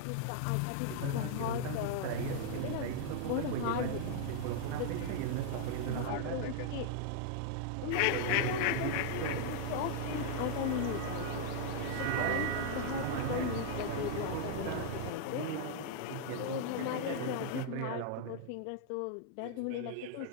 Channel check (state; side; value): different; both; correlation -0.01